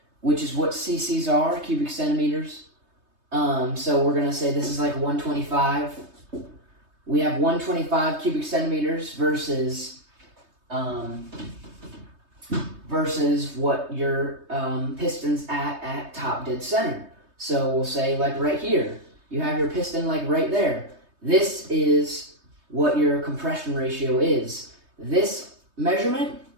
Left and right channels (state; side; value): late; left; 3.2 ms